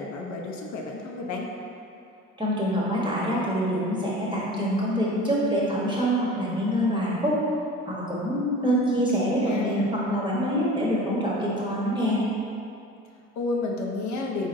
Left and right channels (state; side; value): normal; both; correlation 0.40